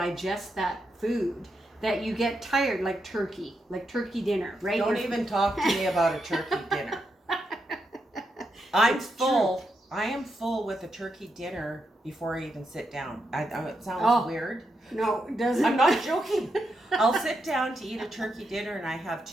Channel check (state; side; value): normal; both; correlation 0.83